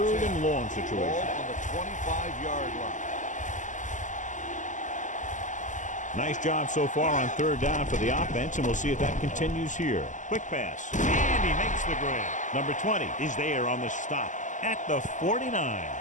and long situation. Ball on the 25-yard line. Nice job so far on third down for the offense, and we'll see if that continues here. Quick pass, and he makes the grab. Number 20 is there on the stop at the 49.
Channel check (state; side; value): late; right; 0.37 ms